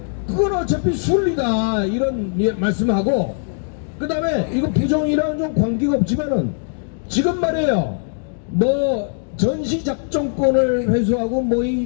그건 어차피 순리다 이런 말씀하고, 그 다음에 이거 부정이랑은 좀 관계가 없지만은 지금 말이에요, 뭐 전시작전권을 회수하고 뭐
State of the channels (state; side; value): silent; right; digital silence